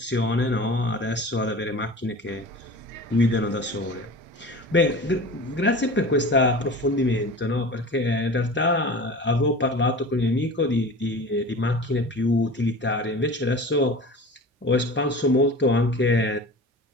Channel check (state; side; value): normal; both; correlation 0.36